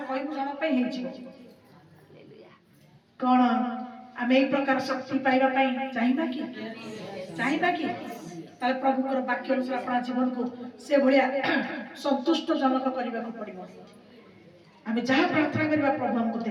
कहिबु जण पे हेइ छी कोन आमे एक प्रकार शक्ति पाइबा पई चाहिबा कि ताले प्रभु को वाक्य अनुसार अपना जीवन को से भलिया संतुष्ट जनक करबा को पड़िबो आमे जहा प्रार्थना करबा प्रभु हमको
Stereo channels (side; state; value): both; identical; correlation 1.00